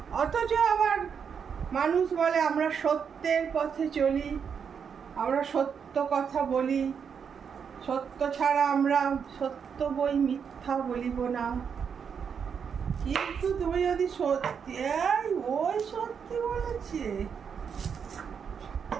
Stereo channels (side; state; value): left; quieter; 6.9 dB